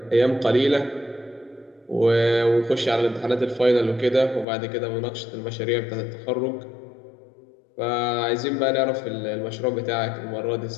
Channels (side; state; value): right; drops out; at 4.5 s